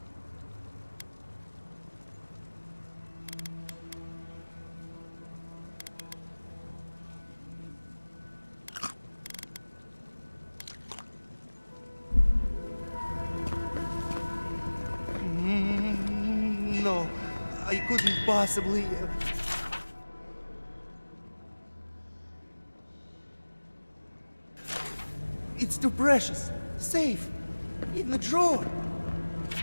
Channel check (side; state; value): both; inverted; correlation -1.00